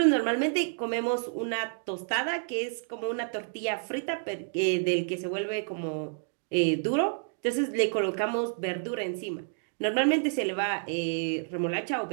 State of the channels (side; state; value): left; silent; digital silence